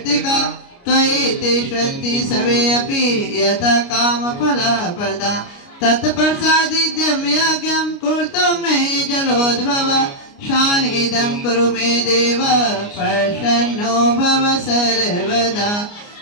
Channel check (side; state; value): right; late; 29 ms